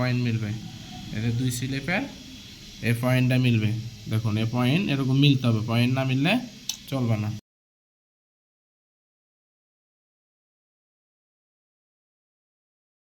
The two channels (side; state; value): both; identical; correlation 1.00